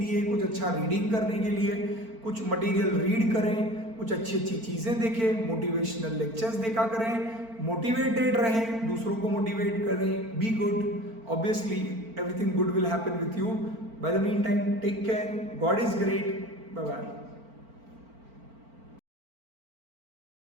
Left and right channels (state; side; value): late; left; 4.4 ms